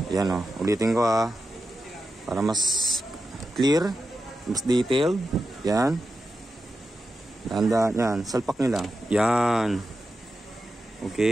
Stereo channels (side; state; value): both; normal; correlation 0.90